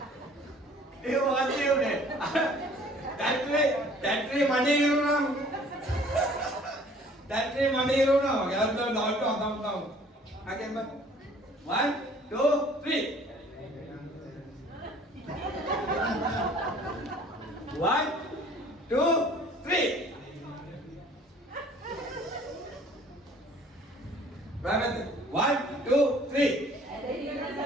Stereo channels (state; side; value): normal; both; correlation 0.54